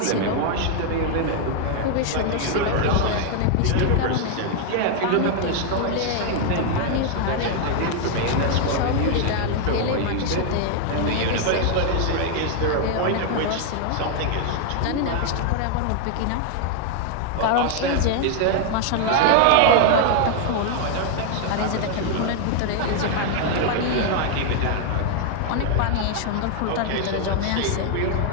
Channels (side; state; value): both; different; correlation 0.00